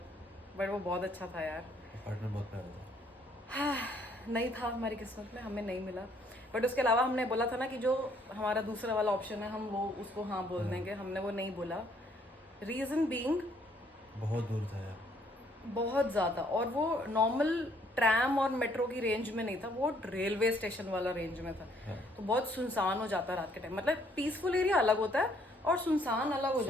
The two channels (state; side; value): normal; both; correlation 0.65